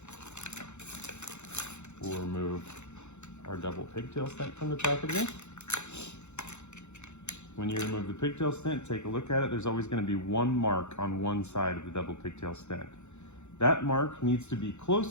We'll remove our double pigtail stent from the packaging. When you remove the pigtail stent, take a look at it. There's always going to be one mark on one side of the double pigtail stent. That mark needs to be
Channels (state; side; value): late; right; 0.83 ms